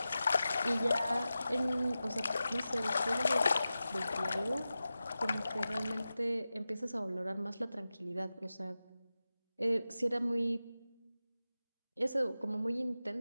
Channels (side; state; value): both; inverted; correlation -0.94